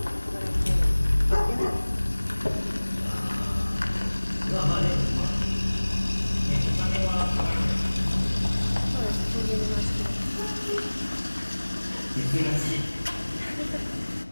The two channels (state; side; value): inverted; both; correlation -1.00